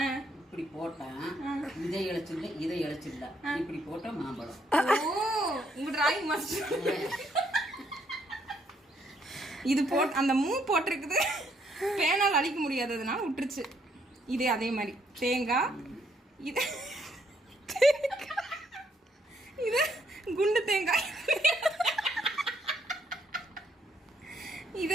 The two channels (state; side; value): normal; both; correlation 0.71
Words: இப்படி போட்டா இதை இழைச்சில்ல, இதை இழைச்சில்ல, இப்படி போட்டா மாம்பழம். உங்க டிராயிங் மாஸ்டர் இது போட் அந்த மூ போட்டிருக்குது. பேனால் அழிக்க முடியாததுனால விட்டுருச்சு. இது அதே மாதிரி தேங்காய். இது இது குண்டு தேங்காய்.